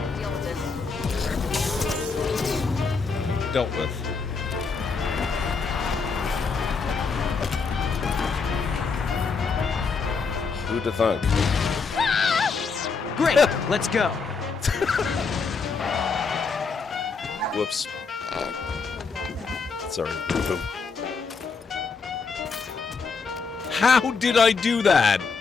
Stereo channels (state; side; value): quieter; right; 4.9 dB